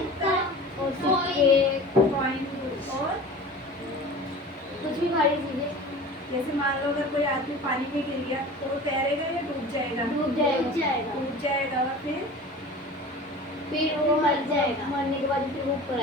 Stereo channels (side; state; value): both; normal; correlation 0.38